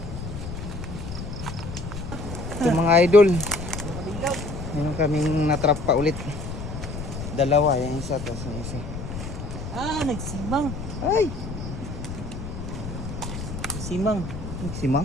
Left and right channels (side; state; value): left; noise; rumble, 7 dB below the sound